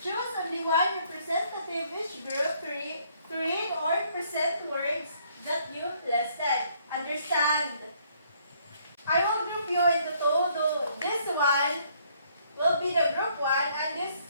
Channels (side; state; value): both; inverted; correlation -0.66